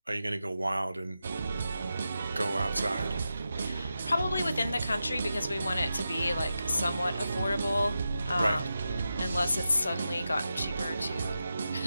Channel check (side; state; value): both; inverted; correlation -0.89